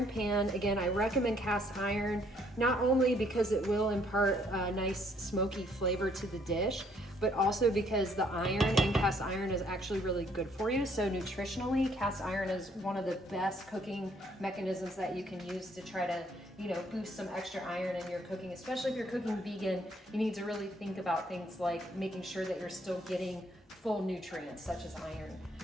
pan. Again, I recommend cast iron, not only because it will impart a nice smoky flavor to the dish, but also because the iron in cast iron is actually really good for you. So nutritionally, cast iron is one of the best cooking mechanisms that you can use to try to, you know, boost some extra iron in your cooking. Especially if you're cooking vegan, you need to really think about things like making sure that you're still getting full nutrients such as iron.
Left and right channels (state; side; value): normal; both; correlation 0.66